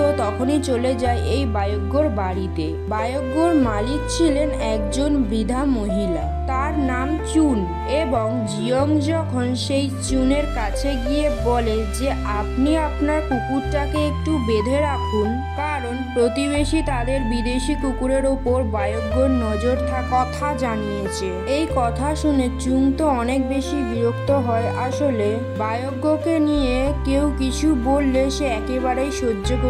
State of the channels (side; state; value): both; identical; correlation 1.00